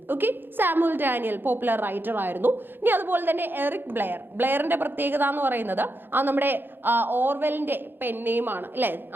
Okay, Samuel Daniel popular writer ആയിരുന്നു. ഇനി അതുപോലെ തന്നെ എറിക് ബ്ലെയർ. ബ്ലെയറിന്റെ പ്രത്യേകത എന്ന് പറയുന്നത് നമ്മുടെ ഓർവെലിന്റെ പെൻ നെയിമാണ് അല്ലെ.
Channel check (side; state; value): left; late; 0.099 ms